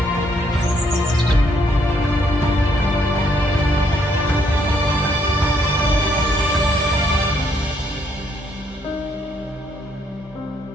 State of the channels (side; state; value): both; normal; correlation 0.71